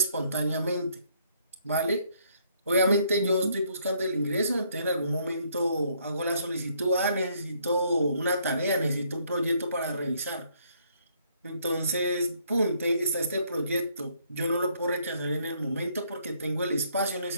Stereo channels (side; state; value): both; inverted; correlation -0.68